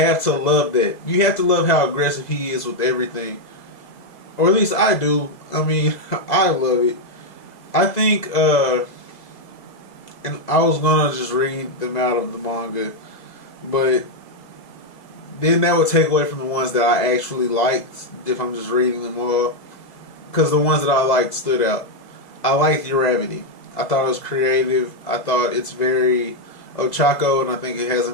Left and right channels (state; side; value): late; right; 2.0 ms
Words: to love that. You have to love how aggressive he is with everything, or at least I do. I mean, I love it. I think, and I was gonna just read them out of the manga, but then that would take away from the ones that I actually liked if I'm just reading them all. Because the ones that I liked stood out. I liked Uravity. I thought it was creative. I thought it's very Ochako, and I think it has a